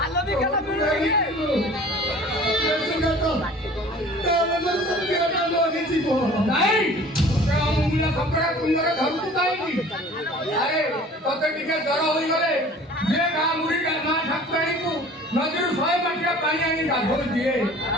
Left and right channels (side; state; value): both; normal; correlation 0.46